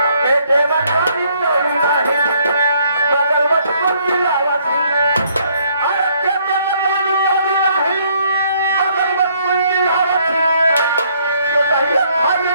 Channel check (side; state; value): both; inverted; correlation -0.67